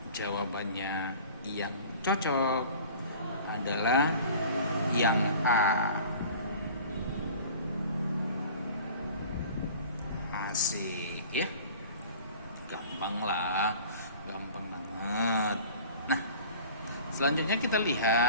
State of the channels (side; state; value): both; inverted; correlation -0.44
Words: jawabannya yang cocok adalah yang A. Asik ya, gampang lah, gampang banget. Nah, selanjutnya kita